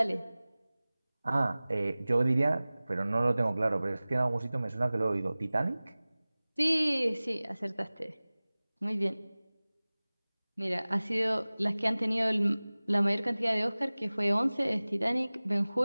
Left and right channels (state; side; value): inverted; both; correlation -0.99